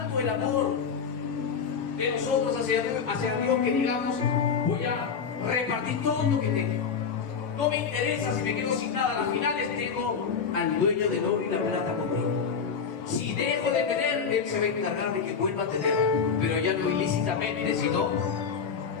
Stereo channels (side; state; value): right; quieter; 6.2 dB